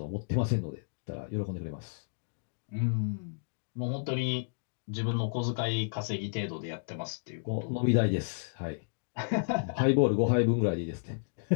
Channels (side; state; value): right; silent; digital silence